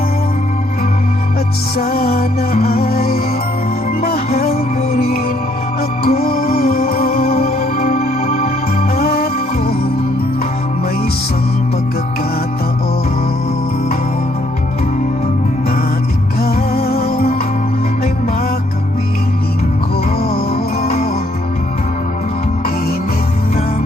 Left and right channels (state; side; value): normal; both; correlation 0.68